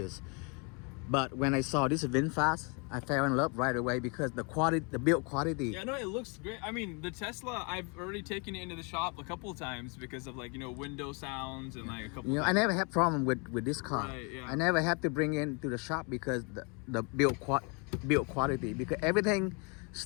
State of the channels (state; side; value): quieter; right; 33.7 dB